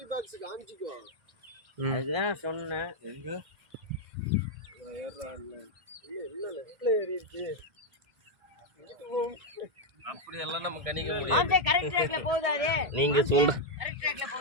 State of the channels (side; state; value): left; late; 1.7 ms